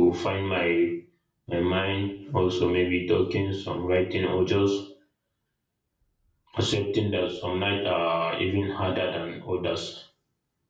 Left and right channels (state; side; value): identical; both; correlation 1.00